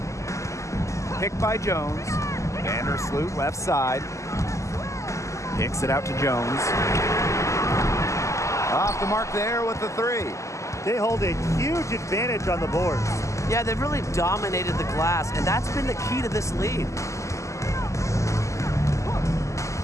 Picked by Jones. Vandersloot left side. Kicks it out to Jones. Off the mark there with the 3. They hold a huge advantage on the boards. Yeah, they've really dominated the glass, and that's been the key to this lead.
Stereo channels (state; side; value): late; right; 0.15 ms